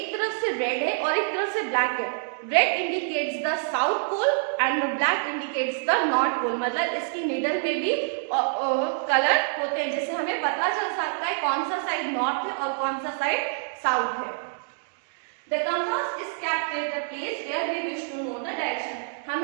तरफ से रेड है और एक तरफ से ब्लैक है. Red indicates the south pole and the black indicates the north pole. मतलब इसकी नीडल में भी कलर होते हैं जिससे हमें पता चल सकता है कौन सा साइड नॉर्थ है और कौन सा साइड साउथ है. The compass is kept at the place where we wish to know the direction.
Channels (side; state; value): left; silent; digital silence